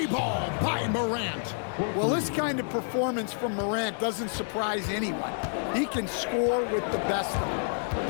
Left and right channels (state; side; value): silent; right; digital silence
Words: ball by Morant. Well, this kind of performance from Morant doesn't surprise anyone. He can score with the best of them.